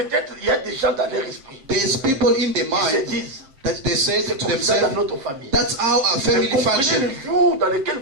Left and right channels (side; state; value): left; late; 7.5 ms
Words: il y a des gens dans leur esprit there's people in their qui se mind disent, that they say c'est to comme ça dans themselves, notre famille. that's how our Mais family comprenez function. le jour dans lequel